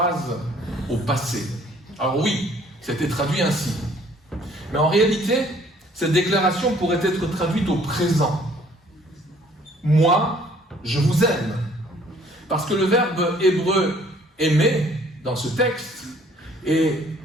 au passé. Alors oui, c'était traduit ainsi. Mais en réalité, cette déclaration pourrait être traduite au présent. Moi, je vous aime. Parce que le verbe hébreu « aimer » dans ce texte est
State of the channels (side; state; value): both; normal; correlation 0.58